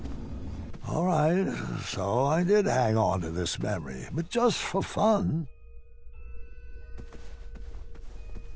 All right, so I did hang on to this memory, but just for fun.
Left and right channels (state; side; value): identical; both; correlation 1.00